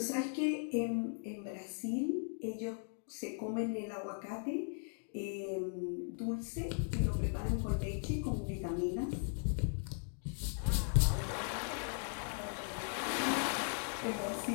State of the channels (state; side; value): silent; right; 52 dB below the other